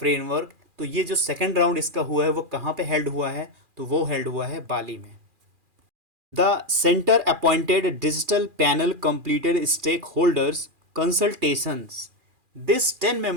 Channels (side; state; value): left; late; 2.4 ms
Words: तो ये जो सेकेंड राउंड इसका हुआ है वो कहाँ पे हेल्ड हुआ है, तो वो हेल्ड हुआ है बाली में। The centre appointed digital panel completed stakeholders consultations. This